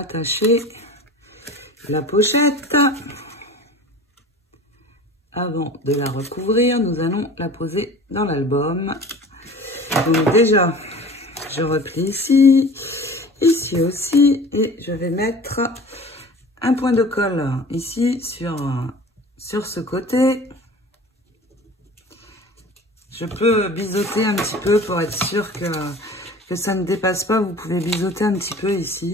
la pochette. Avant de la recouvrir, nous allons la poser dans l'album. Donc déjà, je replie ici, ici aussi, et je vais mettre un point de colle ici sur ce côté. Je peux biseauter un petit peu pour être sûr que ça ne dépasse pas. Vous pouvez biseauter un petit peu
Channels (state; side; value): normal; both; correlation 0.41